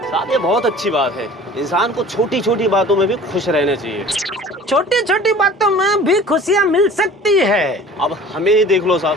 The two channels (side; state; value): both; normal; correlation 0.44